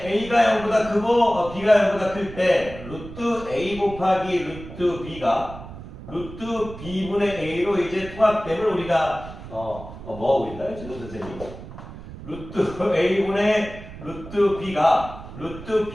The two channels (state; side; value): noise; right; rumble, 14 dB below the sound